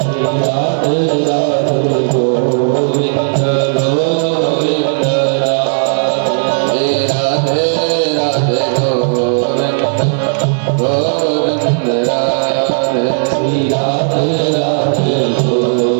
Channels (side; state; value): left; silent; digital silence